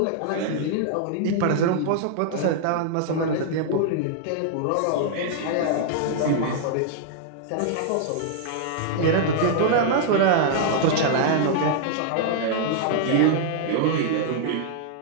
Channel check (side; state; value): both; different; correlation -0.01